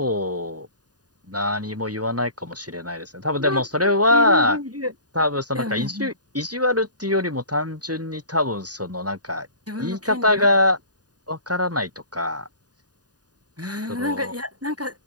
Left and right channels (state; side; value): late; left; 0.68 ms